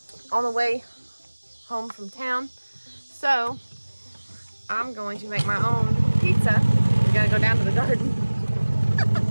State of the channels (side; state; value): both; inverted; correlation -1.00